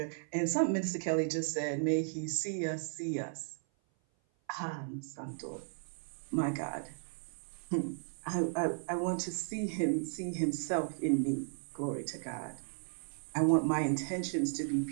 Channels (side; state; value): left; silent; 54 dB below the other